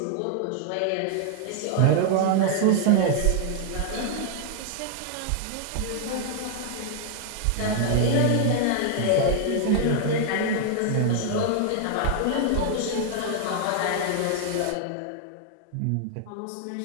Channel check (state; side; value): different; both; correlation -0.01